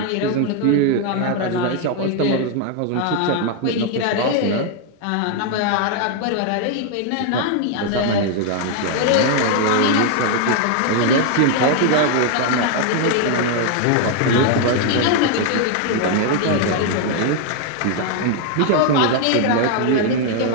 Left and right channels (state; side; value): different; both; correlation 0.00